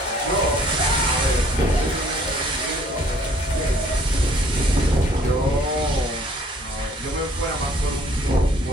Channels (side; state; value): both; normal; correlation 0.59